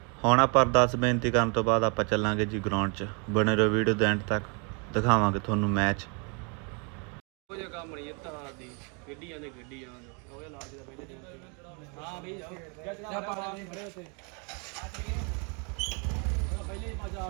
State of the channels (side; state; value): left; quieter; 35.4 dB